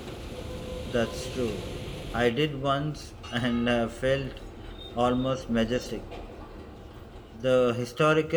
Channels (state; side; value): identical; both; correlation 1.00